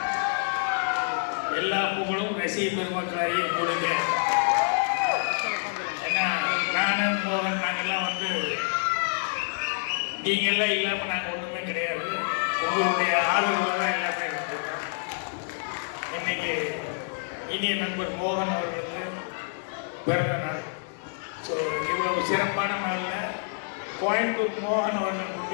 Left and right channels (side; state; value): right; silent; digital silence